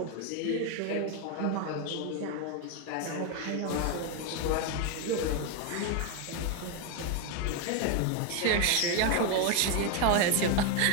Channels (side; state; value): both; different; correlation 0.01